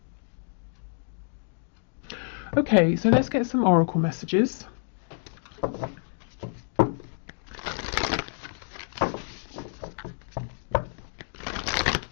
Okay, so let's get some oracle messages.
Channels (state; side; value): silent; right; digital silence